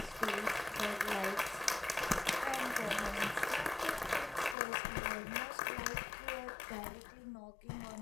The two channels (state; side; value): drops out; right; at 4.5 s